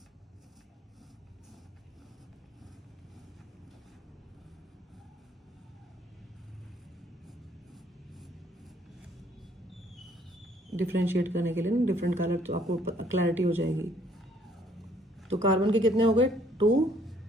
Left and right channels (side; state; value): both; normal; correlation 0.63